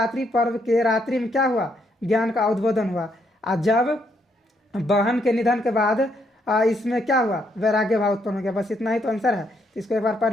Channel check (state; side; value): normal; both; correlation 0.74